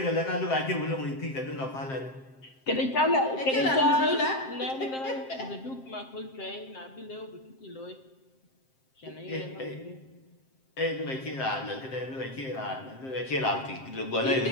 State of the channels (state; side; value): late; right; 7.6 ms